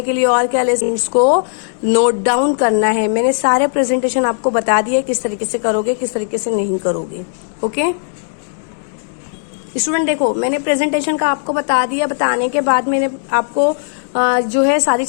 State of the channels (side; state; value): right; silent; digital silence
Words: के लिए। और क्या ले, इसको नोट डाउन करना है। मैंने सारे प्रेजेंटेशन आपको बता दिए किस तरीके से करोगे, किस तरीके से नहीं करोगे। ओके स्टूडेंट, देखो मैंने प्रेजेंटेशन का आपको बता दिया, बताने के बाद मैंने आपको जो है सारी